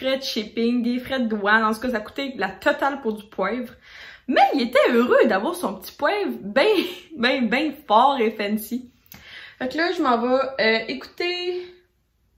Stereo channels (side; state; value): both; identical; correlation 1.00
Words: de shipping, des frais de douane. En tout cas, ça coûtait la totale pour du poivre. Mais il était heureux d'avoir son petit poivre bien fort et fancy. Fait que là, je m'en vais écouter...